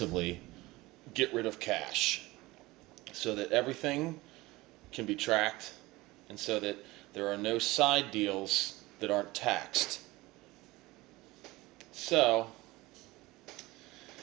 get rid of cash so that everything can be tracked and so that there are no side deals that aren't taxed. So,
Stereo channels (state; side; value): quieter; left; 20.3 dB